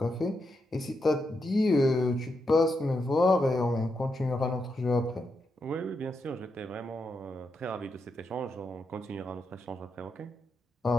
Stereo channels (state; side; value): normal; both; correlation 0.84